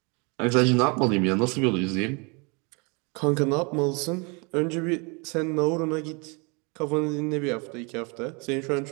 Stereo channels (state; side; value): quieter; left; 31.0 dB